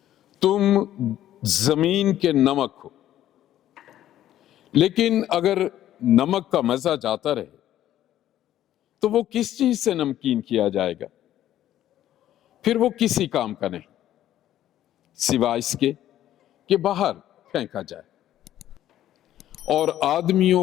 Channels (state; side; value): quieter; right; 12.4 dB